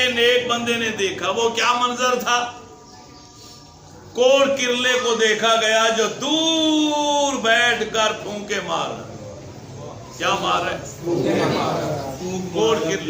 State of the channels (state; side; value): identical; both; correlation 1.00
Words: نیک بندے نے دیکھا، وہ کیا منظر تھا؟ کوڑ کرلے کو دیکھا گیا جو دور بیٹھ کر پھونکے مار رہا۔ کیا مار رہا ہے؟ کوڑ